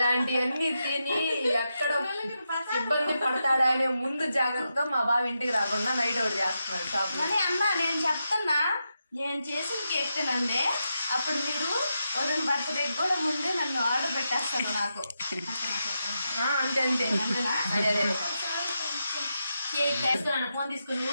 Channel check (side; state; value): both; inverted; correlation -0.86